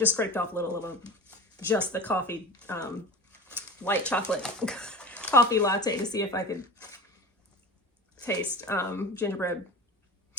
scraped off a little of just the coffee, white chocolate coffee latte to see if I could taste gingerbread.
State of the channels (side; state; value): both; normal; correlation 0.33